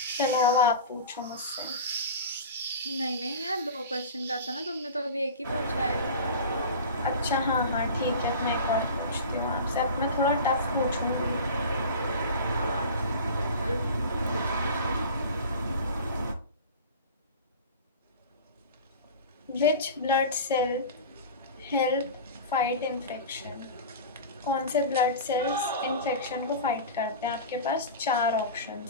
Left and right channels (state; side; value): inverted; both; correlation -0.32